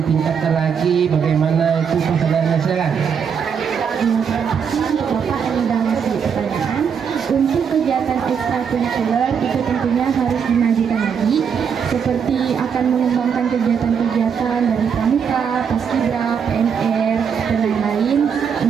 ditingkatkan lagi? Bagaimana itu persenayannya? Silakan. Bapak yang sudah ngasih pertanyaan, untuk kegiatan ekstrakurikuler itu tentunya harus dimajukan lagi, seperti akan mengembangkan kegiatan-kegiatan dari pramuka, paskibra, PNR, dan lain-lain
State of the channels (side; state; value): left; quieter; 7.0 dB